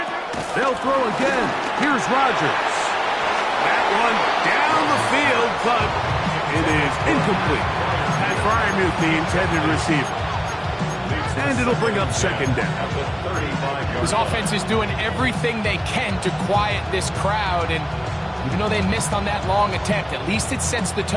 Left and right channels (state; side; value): identical; both; correlation 1.00